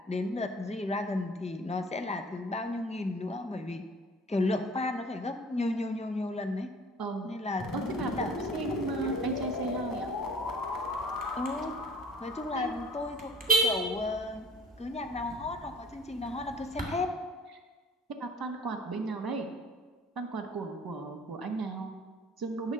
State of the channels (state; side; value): normal; both; correlation 0.50